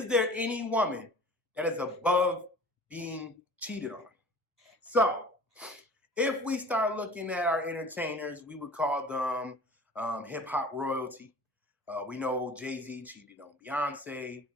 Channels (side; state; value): both; normal; correlation 0.44